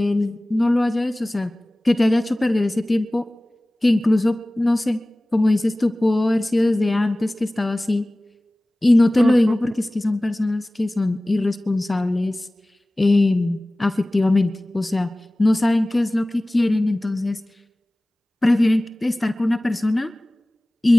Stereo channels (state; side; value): normal; both; correlation 0.98